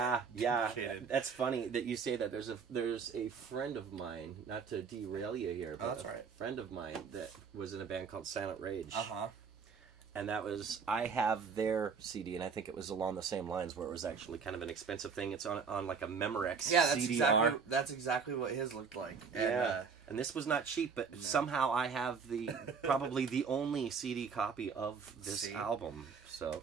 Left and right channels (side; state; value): left; quieter; 5.7 dB